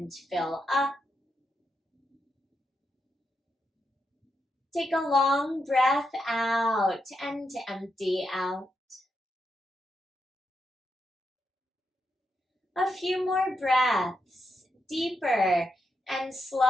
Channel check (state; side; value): normal; both; correlation 0.84